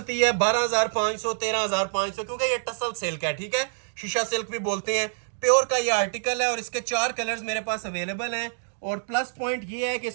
है 12,500 13,500, क्योंकि ये टसल सिल्क है, ठीक है, शीशा सिल्क भी बोलते हैं। प्योर का ये आर्टिकल है और इसके 4 कलर्स मेरे पास अवेलेबल हैं। और प्लस पॉइंट ये है कि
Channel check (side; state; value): left; silent; digital silence